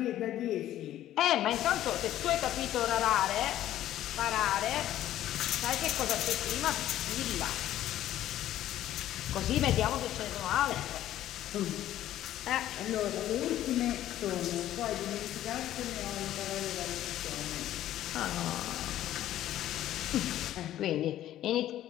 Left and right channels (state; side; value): quieter; right; 12.9 dB